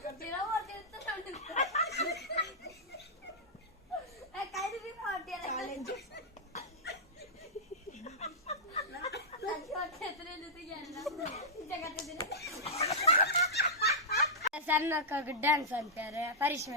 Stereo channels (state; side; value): normal; both; correlation -0.11